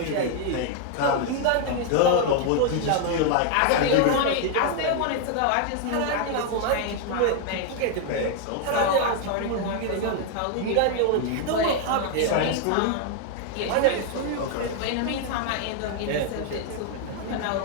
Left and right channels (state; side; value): different; both; correlation 0.00